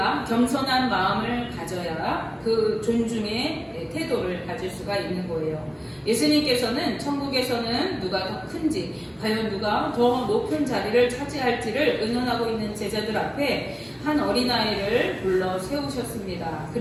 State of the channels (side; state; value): both; identical; correlation 1.00